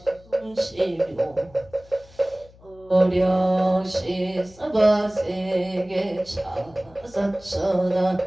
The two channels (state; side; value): noise; left; hum, 25 dB below the sound